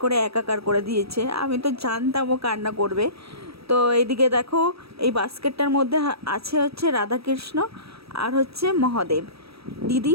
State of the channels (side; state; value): left; late; 0.77 ms